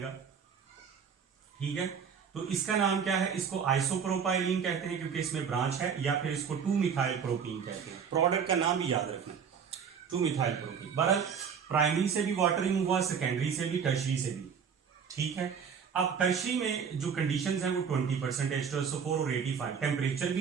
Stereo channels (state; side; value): quieter; left; 6.9 dB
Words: ठीक है। तो इसका नाम क्या है, इसको आइसोप्रोपाइलीन कहते हैं क्योंकि इसमें ब्रांच है, या फिर इसको 2-मिथाइल प्रोपीन कहते हैं। प्रोडक्ट का नाम भी याद रखना, 2-मिथाइल प्रोपीन। बहरहाल प्राइमरी से भी वाटर रिमूव हुआ, सेकेंडरी से भी, टर्शरी से भी, ठीक है। अब टर्शरी में जो कंडीशंस हैं वो 20% H2SO4 और 85, टेम्परेचर